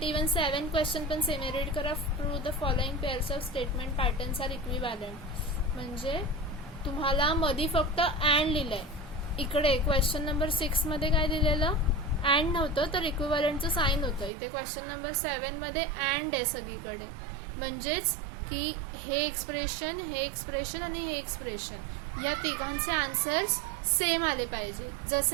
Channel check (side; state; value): left; drops out; at 14.3 s